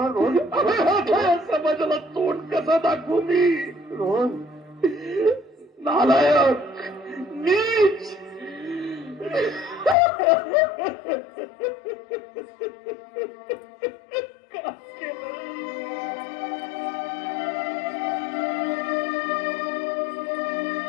रोहन समाजाला तोंड कसं दाखवू मी? रोहन नालायक, नीच.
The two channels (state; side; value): drops out; right; at 10.0 s